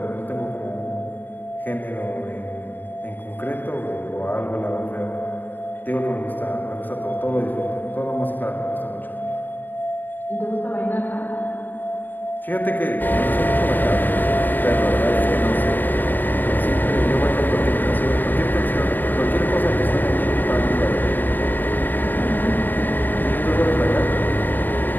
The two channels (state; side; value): late; right; 0.091 ms